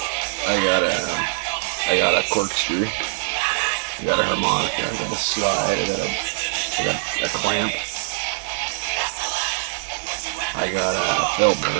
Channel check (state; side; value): silent; left; 64 dB below the other